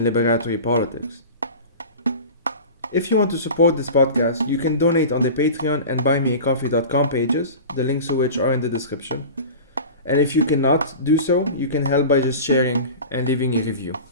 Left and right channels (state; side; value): inverted; both; correlation -0.34